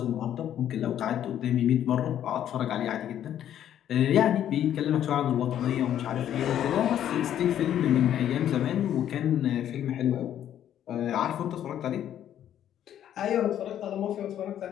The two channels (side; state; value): right; quieter; 10.7 dB